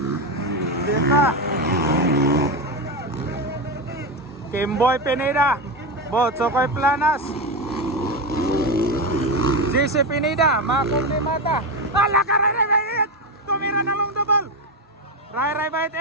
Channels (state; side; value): normal; both; correlation 0.14